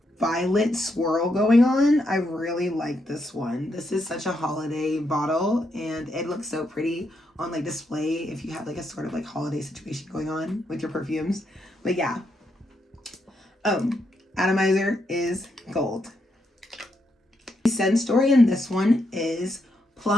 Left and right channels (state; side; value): normal; both; correlation 0.80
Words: violet swirl going on. I really like this one. This is such a holiday bottle and it looks so pretty on like display if you have like a sort of like holiday situation going on with your perfumes. But yeah. Atomizer is gold. The scent story in this one is